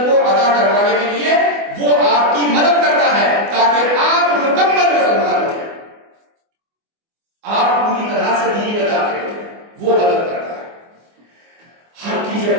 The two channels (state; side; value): late; left; 24 ms